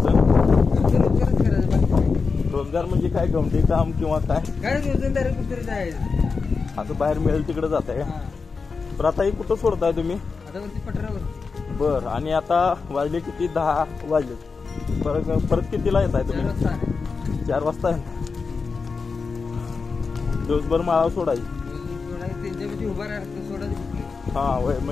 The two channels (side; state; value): right; quieter; 4.8 dB